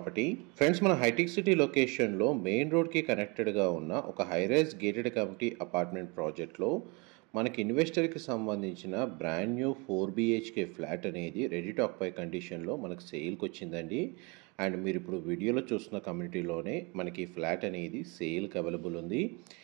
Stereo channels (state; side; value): quieter; left; 29.4 dB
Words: Friends, మన hitech city లొకేషన్లో మెయిన్ రోడ్కి కనెక్టెడ్గా ఉన్న ఒక హైరైజ్ గేటెడ్ కమ్యూనిటీ అపార్ట్మెంట్ ప్రాజెక్ట్లో మనకి ఇన్వెస్టర్కి సంబంధించిన బ్రాండ్ న్యూ 4 BHK ఫ్లాట్ అనేది రెడీ టు ఆక్యుపై కండిషన్లో మనకు సేల్కి వచ్చిందండి. అండ్ మీరు ఇప్పుడు వీడియోలో చూస్తున్న కమ్యూనిటీలోనే మనకి ఫ్లాట్ అనేది సేల్కి అవైలబుల్ ఉంది.